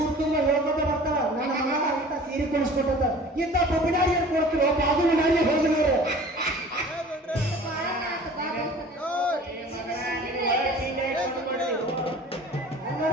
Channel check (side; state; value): both; normal; correlation 0.45